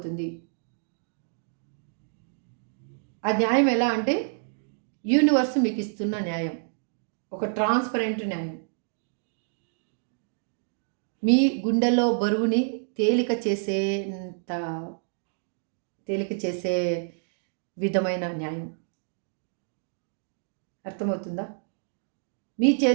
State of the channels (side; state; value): left; silent; digital silence